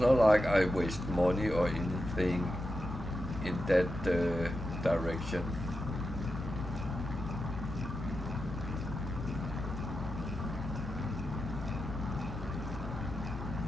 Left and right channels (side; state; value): both; normal; correlation 0.89